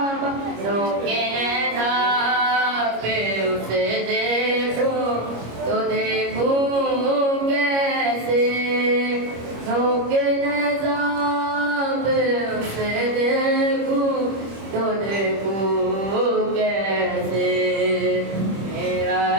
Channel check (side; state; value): left; late; 25 ms